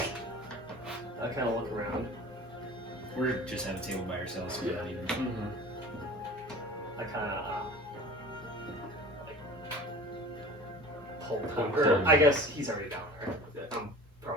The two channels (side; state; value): both; normal; correlation 0.39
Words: I kind of look around. We're just at a table by ourselves. So we're not even. I kind of pull Tom. Pull Or him. I guess he's already down there. I'm